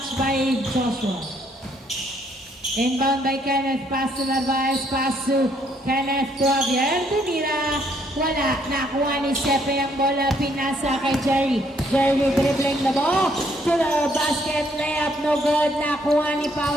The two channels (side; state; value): both; normal; correlation 0.69